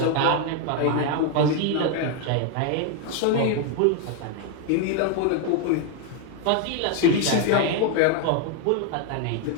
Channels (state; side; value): different; both; correlation 0.01